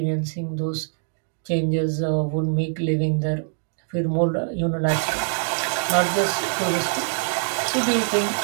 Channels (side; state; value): left; silent; digital silence